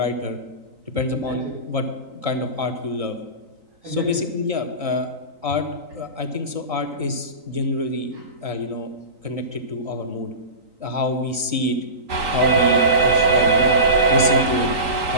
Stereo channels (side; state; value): left; late; 3.9 ms